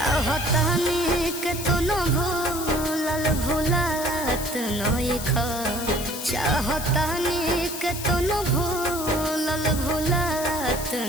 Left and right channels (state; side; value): noise; left; hiss, 8 dB below the sound